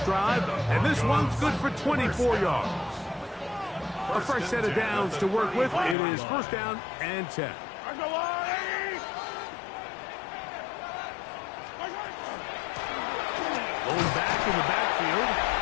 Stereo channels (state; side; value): drops out; right; at 6.0 s